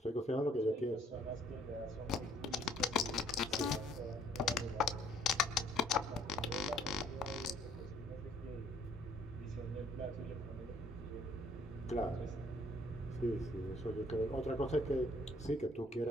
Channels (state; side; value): normal; both; correlation 0.61